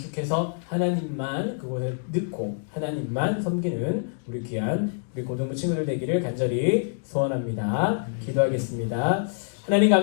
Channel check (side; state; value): right; silent; digital silence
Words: 하나님만 그곳에 넣고 하나님만 섬기는 우리 귀한 우리 고등부 친구들 되기를 간절히 소원합니다. 기도하겠습니다. 하나님